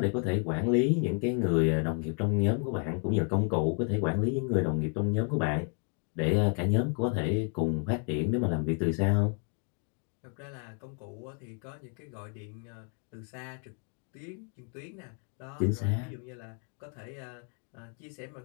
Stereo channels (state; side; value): quieter; right; 38.1 dB